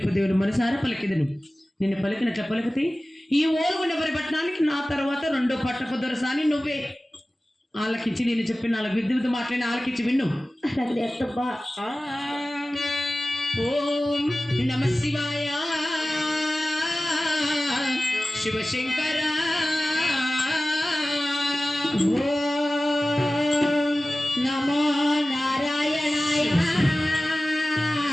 దేవుని మనసారా పలికిదను. నిన్ను పలికినట్ల పలికితే ఈ ఓలుగుండ వరి పట్టణానికి నా తర్వాత రెండో పట్టపు దొరసాని నువ్వే. ఆలకించి నేను చెప్పిన నాలుగు విద్యుత్ మాట్లాడిన ఆలకించి విన్ను. అలాగే అత్తమ్మా. ఓం నమ శివాయ శివశంకర. ఓం నమో నారాయణాయ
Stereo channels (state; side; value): normal; both; correlation 0.96